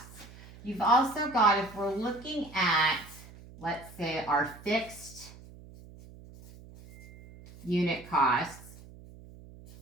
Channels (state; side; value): noise; right; hum, 19 dB below the sound